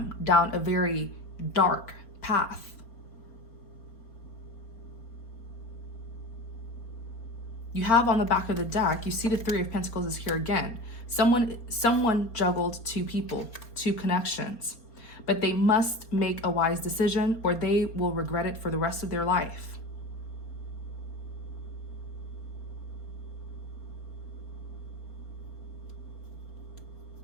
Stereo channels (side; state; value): right; late; 4.3 ms